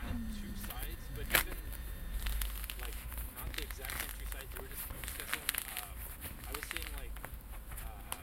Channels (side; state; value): both; identical; correlation 1.00